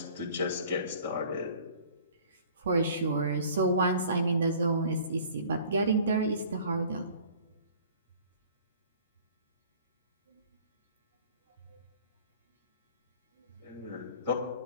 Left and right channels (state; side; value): inverted; both; correlation -0.50